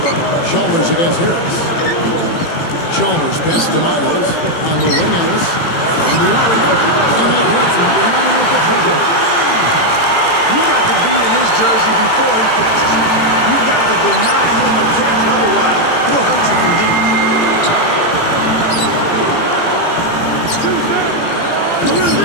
Chalmers against Harris. Chalmers best to Miles on the wing. Ellis from the arc. And that gets him behind with the trigger. You got to be in his jersey before he catches it. You've got to deny him a catch, otherwise he'll hurt you from deep. The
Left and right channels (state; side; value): late; right; 18 ms